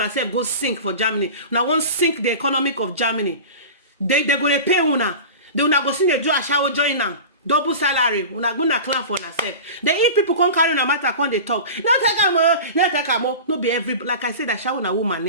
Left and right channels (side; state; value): both; inverted; correlation -0.32